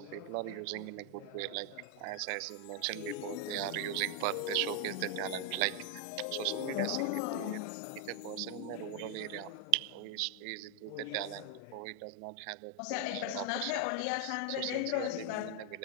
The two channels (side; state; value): both; different; correlation 0.01